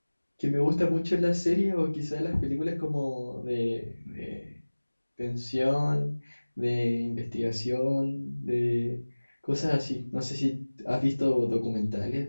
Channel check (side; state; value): both; inverted; correlation -1.00